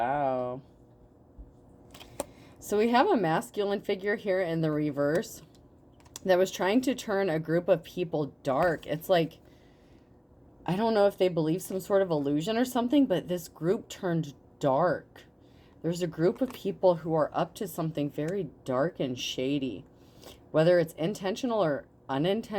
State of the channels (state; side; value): identical; both; correlation 1.00